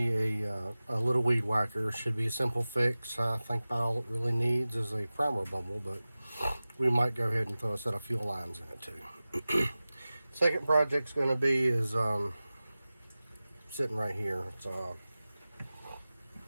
a little weed whacker. Should be a simple fix. I think about all it really needs is a primer bubble, but we might go ahead and throw a set of fuel lines in it too. Second project's going to be is sitting right here. It's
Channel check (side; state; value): both; inverted; correlation -0.97